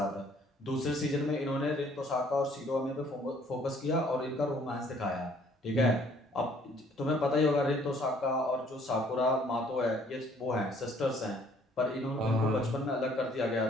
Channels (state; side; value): normal; both; correlation 0.60